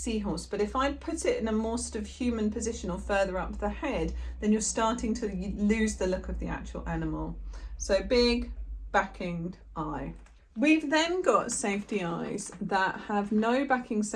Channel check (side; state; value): both; identical; correlation 1.00